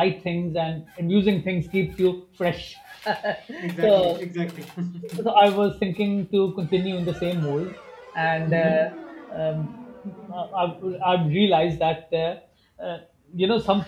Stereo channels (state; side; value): identical; both; correlation 1.00